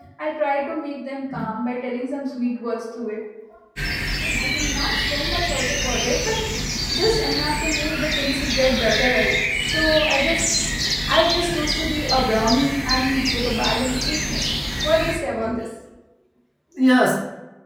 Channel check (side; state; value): both; identical; correlation 1.00